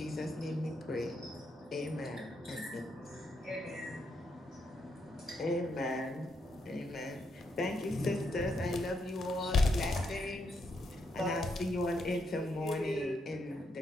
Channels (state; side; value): normal; both; correlation 0.79